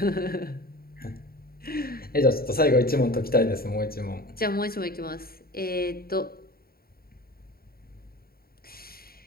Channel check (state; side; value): late; right; 0.44 ms